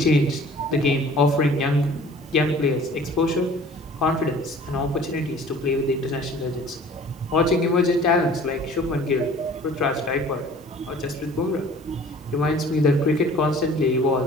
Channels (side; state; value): both; normal; correlation 0.49